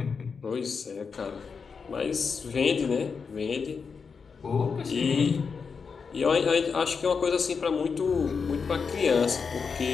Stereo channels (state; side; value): quieter; right; 5.5 dB